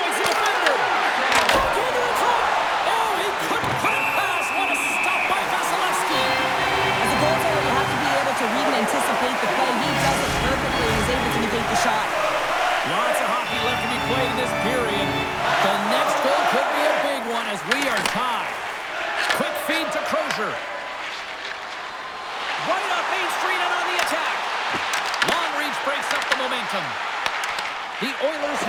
the defender. Goaltender in front. Oh, he couldn't put it past. What a stop by Vasilevsky. As a goaltender, you have to be able to read and anticipate the play. He does it perfectly and is able to negate the shot. Lots of hockey left to be played in this period. The next goal could be a big one as we are tied. Quick feed to Crozier. Right up Main Street and on the attack. Long reach breaks up the momentum. The Oilers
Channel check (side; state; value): both; identical; correlation 1.00